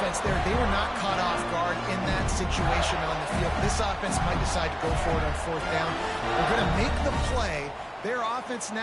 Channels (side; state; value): both; identical; correlation 1.00